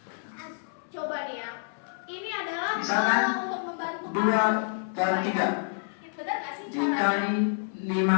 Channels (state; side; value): silent; right; 59 dB below the other